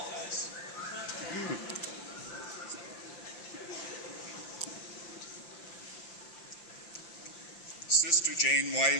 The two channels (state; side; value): late; right; 5.7 ms